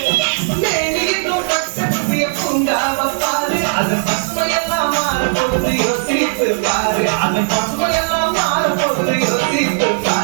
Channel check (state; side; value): silent; left; 56 dB below the other